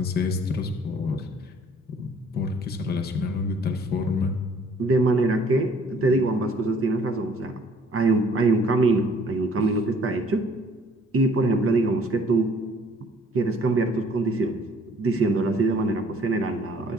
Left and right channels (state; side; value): normal; both; correlation 0.58